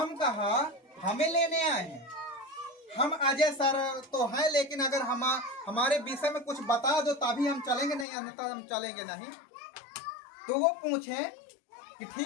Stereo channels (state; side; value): drops out; right; at 8.1 s